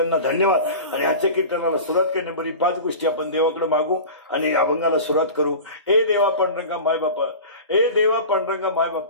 धन्यवाद आणि आजच्या कीर्तनाला सुरुवात करण्यापूर्वी 5 गोष्टी आपण देवाकडे मागू आणि अभंगाला सुरुवात करू ए देवा पांडुरंगा माय बापा ए देवा पांडुरंगा माय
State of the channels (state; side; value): inverted; both; correlation -0.34